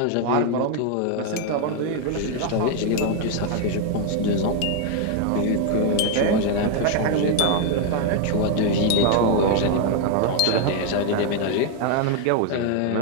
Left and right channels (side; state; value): both; different; correlation 0.00